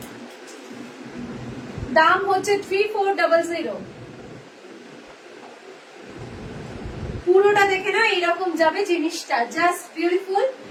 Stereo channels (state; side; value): identical; both; correlation 1.00